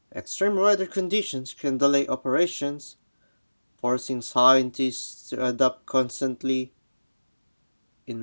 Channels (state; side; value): inverted; both; correlation -1.00